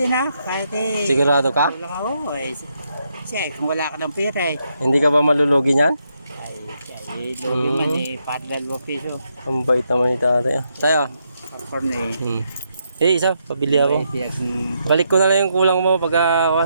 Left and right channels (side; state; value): both; inverted; correlation -0.79